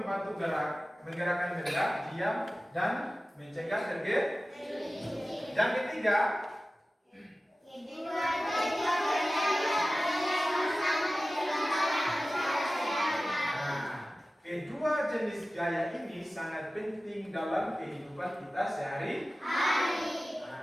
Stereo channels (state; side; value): normal; both; correlation 0.96